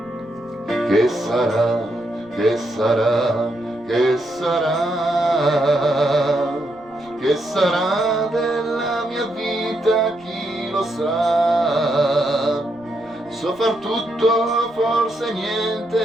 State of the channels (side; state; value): right; noise; rumble, 29 dB below the sound